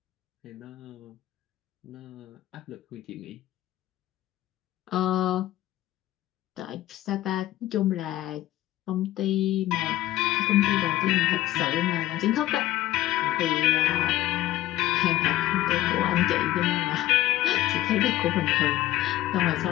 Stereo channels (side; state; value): right; quieter; 15.0 dB